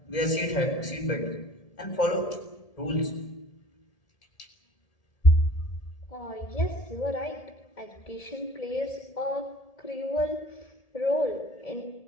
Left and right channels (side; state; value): right; late; 1.7 ms